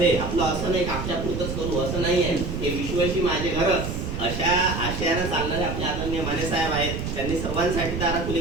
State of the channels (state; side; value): noise; right; rumble, 5 dB below the sound